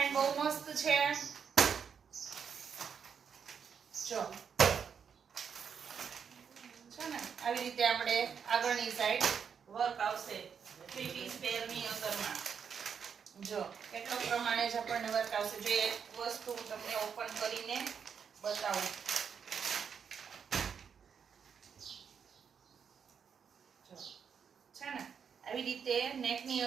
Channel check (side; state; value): left; quieter; 7.0 dB